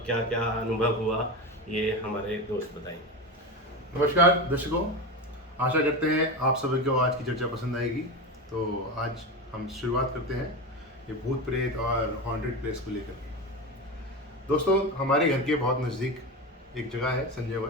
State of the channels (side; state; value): both; normal; correlation 0.21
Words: क्या क्या अनुभव हुआ, ये हमारे दोस्त बताएंगे। नमस्कार दर्शकों, आशा करते हैं आप सभी को आज की चर्चा पसंद आएगी। तो आज हम शुरुआत करते हैं ये भूत प्रेत और हॉन्टेड प्लेस को लेकर। दोस्तों, हमारे घर के बहुत नज़दीक एक जगह है संजय